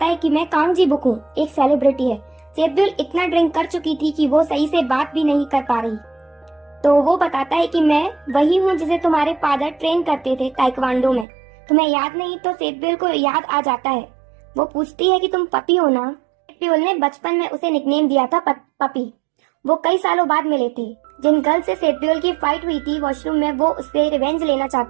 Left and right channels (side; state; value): left; drops out; at 11.2 s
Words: है कि मैं कांग जी बुक हूँ, एक सेलिब्रिटी है। सेतब्योल इतना ड्रिंक कर चुकी थी कि वो सही से बात भी नहीं कर पा रही। तो वो बताता है कि मैं वही हूँ जिसे तुम्हारे फादर ट्रेन करते थे ताइक्वांडो में। तुम्हें याद नहीं? तो सेतब्योल को याद आ जाता है। वो पूछती है कि तुम पपी हो ना? सेतब्योल ने बचपन में उसे निकनेम दिया था पपी। वो कई सालों बाद मिले थे। जिन गर्ल से सेतब्योल की फाइट हुई थी वॉशरूम में, वो उससे रिवेंज लेना